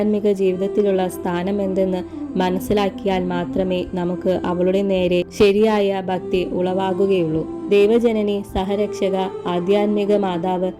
ജീവിതത്തിലുള്ള സ്ഥാനം എന്തെന്ന് മനസ്സിലാക്കിയാൽ മാത്രമേ നമുക്ക് അവളുടെ നേരെ ശരിയായ ഭക്തി ഉളവാകുകയുള്ളൂ. ദൈവജനനി, സഹരക്ഷക, ആധ്യാത്മിക മാതാവ്,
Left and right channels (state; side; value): identical; both; correlation 1.00